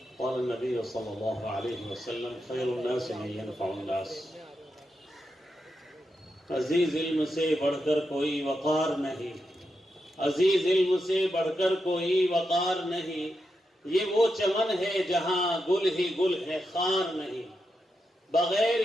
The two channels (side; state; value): both; normal; correlation 0.86